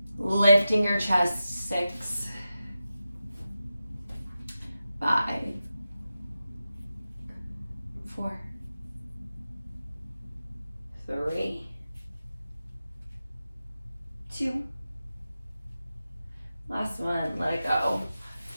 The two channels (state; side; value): inverted; both; correlation -0.92